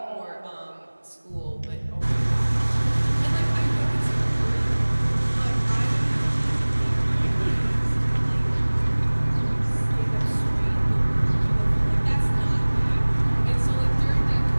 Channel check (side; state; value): both; inverted; correlation -1.00